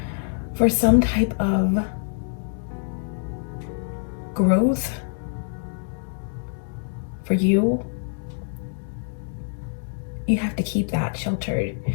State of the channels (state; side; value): silent; right; 62 dB below the other